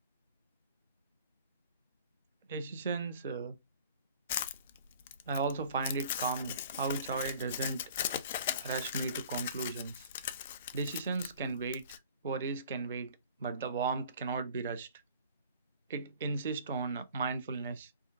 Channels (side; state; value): both; inverted; correlation -0.48